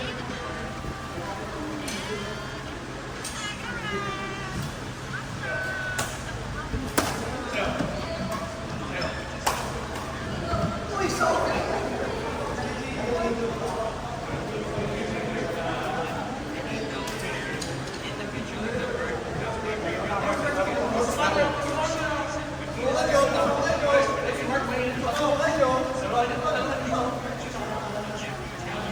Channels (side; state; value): both; identical; correlation 1.00